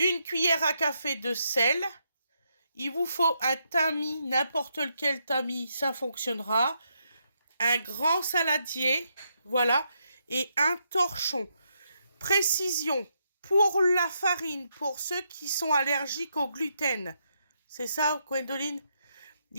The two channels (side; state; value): both; inverted; correlation -0.79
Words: cuillère à café de sel. Il vous faut un tamis, n'importe lequel tamis, ça fonctionnera. Un grand saladier, voilà. Et un torchon. Précision, pour la farine, pour ceux qui sont allergiques au gluten. C'est ça, Gwendoline?